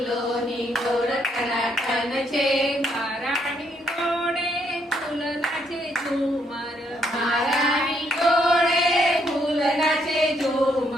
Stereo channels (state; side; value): normal; both; correlation 0.73